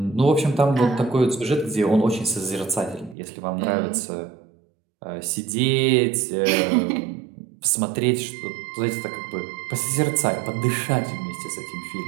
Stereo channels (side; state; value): left; drops out; at 3.2 s